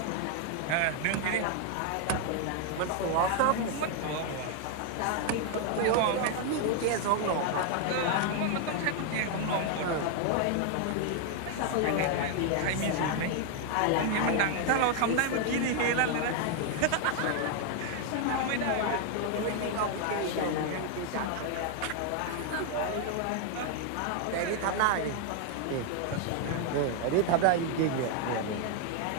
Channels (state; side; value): different; both; correlation 0.00